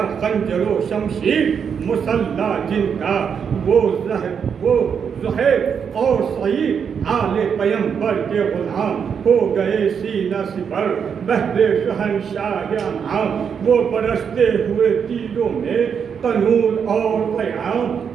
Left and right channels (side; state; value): left; quieter; 7.0 dB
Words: خنجر و شمشیر مسلح جن کا، وہ زہیب اور سعید آل پیمبر کے غلام ہو گئے سینہ سپر بہر شہنشاہ انعام، وہ برستے ہوئے تیروں میں قانون اور پیام،